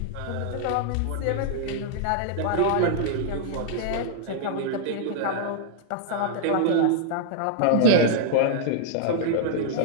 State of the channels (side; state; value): both; different; correlation -0.01